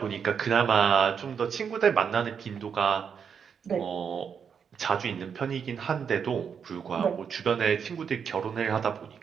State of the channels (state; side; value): quieter; left; 7.0 dB